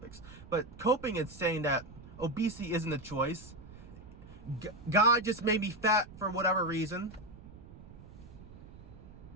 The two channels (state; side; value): noise; right; rumble, 17 dB below the sound